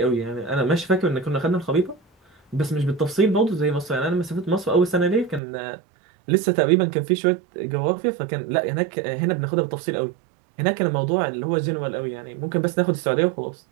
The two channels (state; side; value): drops out; left; at 5.4 s